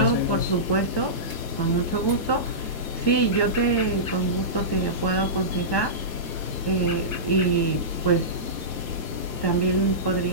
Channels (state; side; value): late; right; 1.2 ms